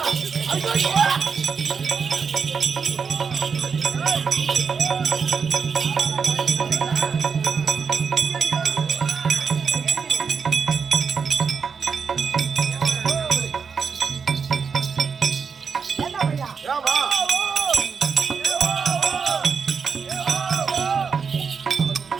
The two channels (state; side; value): quieter; left; 5.8 dB